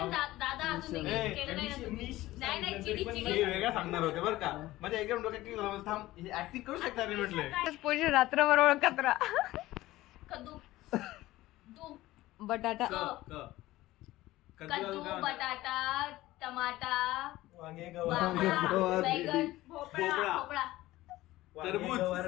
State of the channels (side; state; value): right; quieter; 17.0 dB